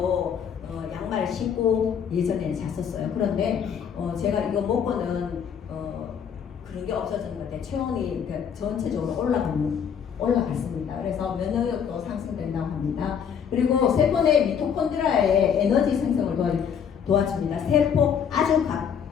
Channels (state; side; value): quieter; right; 7.6 dB